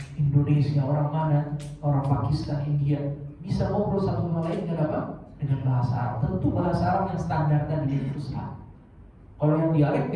Indonesia, orang mana, orang Pakistan, India bisa ngobrol satu sama lain dengan apa? Dengan bahasa Arab. Tentu bahasa Arab yang standar tadi itu susah. Kalau yang dialek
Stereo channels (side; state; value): both; identical; correlation 1.00